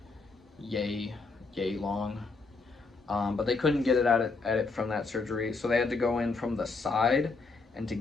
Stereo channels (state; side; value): quieter; right; 4.1 dB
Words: yay long. But they couldn't get it at it from that surgery, so they had to go in from the side. And to